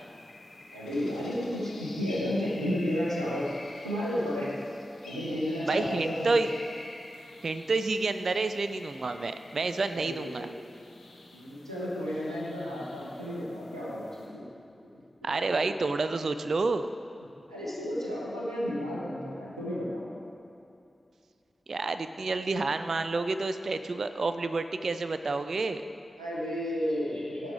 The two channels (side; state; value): both; normal; correlation 0.90